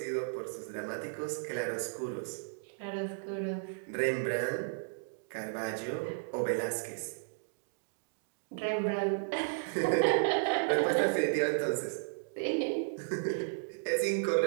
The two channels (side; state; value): left; silent; digital silence